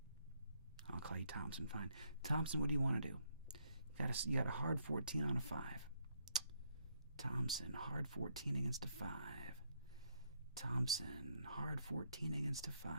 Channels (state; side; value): inverted; both; correlation -0.73